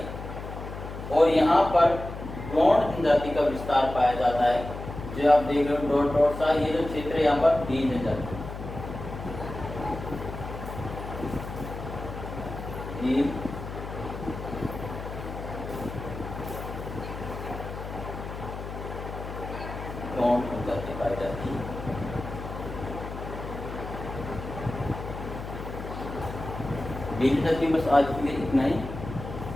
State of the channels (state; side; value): noise; left; hum, 9 dB below the sound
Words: और यहाँ पर गोंड जनजाति का विस्तार पाया जाता है। जो आप देख रहे हो डॉट डॉट सा, ये जो क्षेत्र है यहाँ पर भील जनजाति, भील गोंड जनजाति पाई जाती है। बस आज के लिए इतना ही।